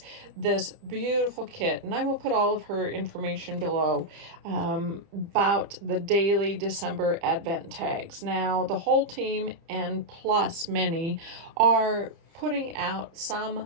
this beautiful kit, and I will put all of her information below about the daily December Advent tags. Now, the whole team and plus many are putting out some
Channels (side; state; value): left; late; 30 ms